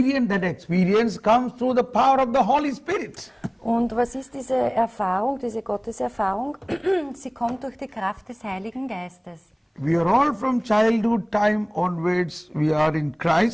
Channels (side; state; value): both; identical; correlation 1.00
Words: That experience comes through the power of the Holy Spirit. Und was ist diese Erfahrung, diese Gotteserfahrung? Sie kommt durch die Kraft des Heiligen Geistes. We are all from childhood time onwards, we are in